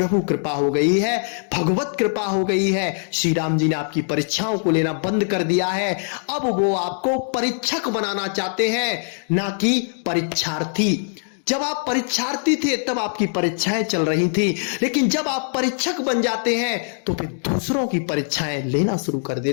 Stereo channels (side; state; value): right; silent; digital silence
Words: कृपा हो गई है, भगवत कृपा हो गई है। श्री राम जी ने आपकी परीक्षाओं को लेना बंद कर दिया है। अब वो आपको परीक्षक बनाना चाहते हैं, ना कि परीक्षार्थी। जब आप परीक्षार्थी थे तब आपकी परीक्षाएं चल रही थी, लेकिन जब आप परीक्षक बन जाते हैं तो फिर दूसरों की परीक्षाएं लेना शुरू कर